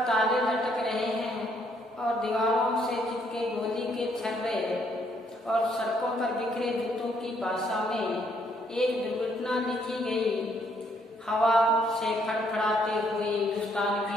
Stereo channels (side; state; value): both; normal; correlation 0.70